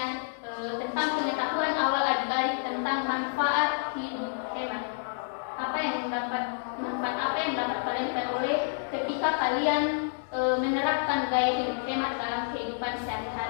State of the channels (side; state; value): right; silent; digital silence